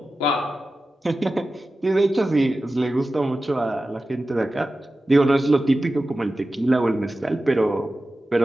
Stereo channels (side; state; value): both; normal; correlation 0.94